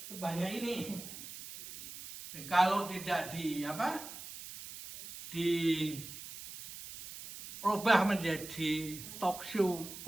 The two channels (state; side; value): noise; right; hiss, 12 dB below the sound